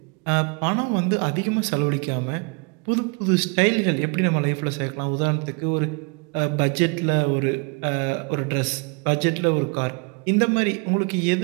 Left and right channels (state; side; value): quieter; left; 33.5 dB